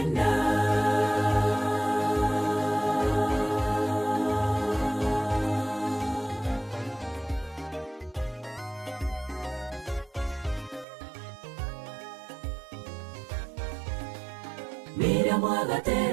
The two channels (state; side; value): drops out; left; at 10.9 s